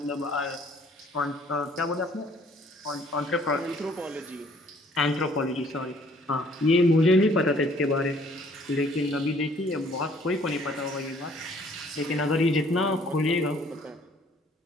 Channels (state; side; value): normal; both; correlation 0.59